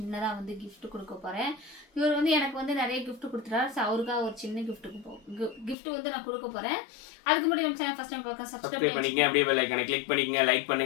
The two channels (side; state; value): right; drops out; at 5.8 s